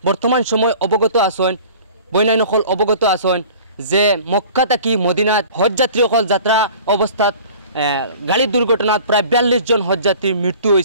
বর্তমান সময় অবগত আছেন, বইনাইনসকল অবগত আছেন যে মক্কা থাকি মদিনাত হজযাত্রীসকল যাত্রা অবস্থাত গাড়ির দুর্ঘটনাত প্রায় 42 জন হজযাত্রীর মৃত্যু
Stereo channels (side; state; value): both; inverted; correlation -0.45